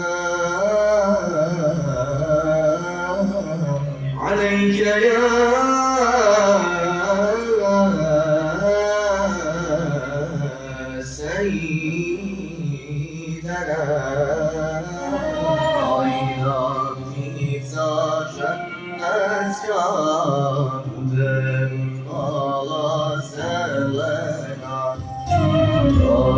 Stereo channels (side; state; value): both; identical; correlation 1.00